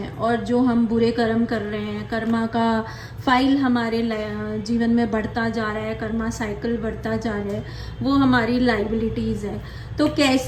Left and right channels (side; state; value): both; identical; correlation 1.00